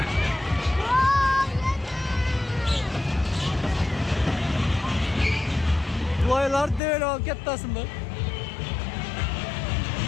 Бұлайлар дөйел ол кеттасын бұл.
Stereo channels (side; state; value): right; drops out; at 6.8 s